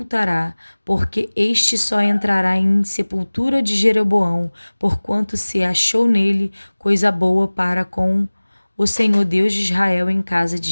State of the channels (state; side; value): inverted; both; correlation -1.00